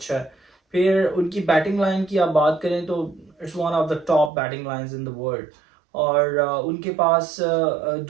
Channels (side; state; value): left; drops out; at 4.3 s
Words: है। फिर उनकी बैटिंग लाइन की आप बात करें तो it's one of the top batting lines in the world. और उनके पास